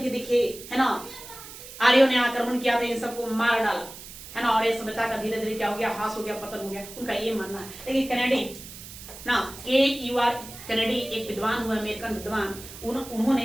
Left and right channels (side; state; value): right; noise; hiss, 14 dB below the sound